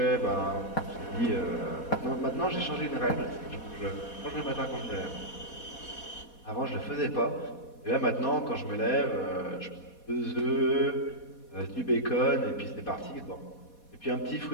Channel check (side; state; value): right; late; 4.2 ms